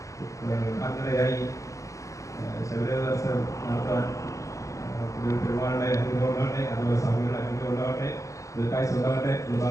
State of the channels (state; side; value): late; right; 0.16 ms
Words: അങ്ങനെയായി ശബരിമല ദർശനം നടത്താൻ പെരുമാളുടെ അനുഗ്രഹം ഉണ്ടാകട്ടെ, അതുപോലെ സ്വാമികളുടെ അനുഗ്രഹം ഉണ്ടാകട്ടെ, ദീർഘായുസ്സ് ഉണ്ടാകട്ടെ എന്ന്